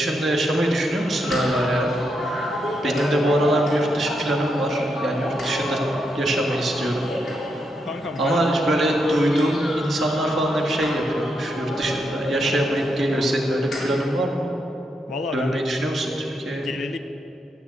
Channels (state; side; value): normal; both; correlation 0.81